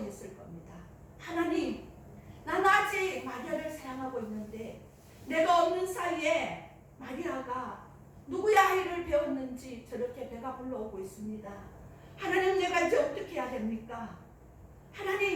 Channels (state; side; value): identical; both; correlation 1.00